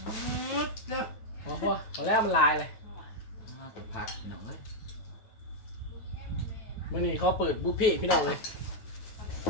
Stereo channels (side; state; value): right; late; 9.4 ms